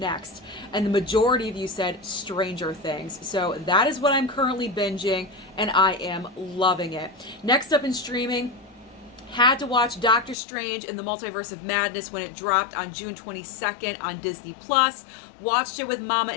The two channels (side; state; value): right; drops out; at 10.4 s